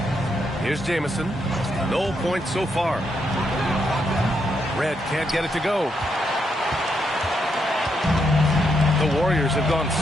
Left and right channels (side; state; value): both; normal; correlation 0.79